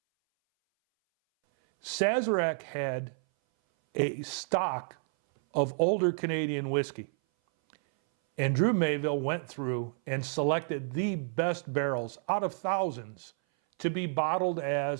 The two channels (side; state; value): left; silent; 58 dB below the other